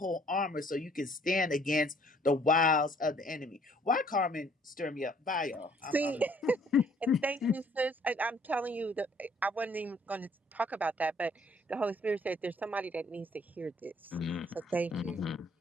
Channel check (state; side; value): normal; both; correlation 0.61